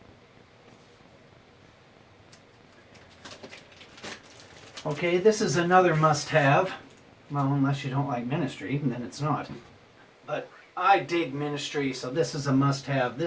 Okay, this is another must-have. Well, unless you don't like Ministry, then it's not. But I dig Ministry, so this is a must-have.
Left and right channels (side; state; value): both; identical; correlation 1.00